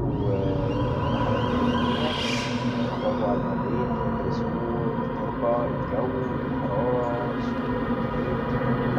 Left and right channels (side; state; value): both; identical; correlation 1.00